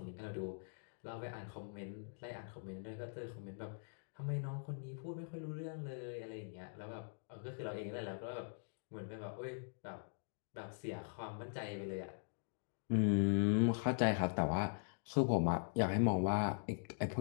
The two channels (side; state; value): right; silent; digital silence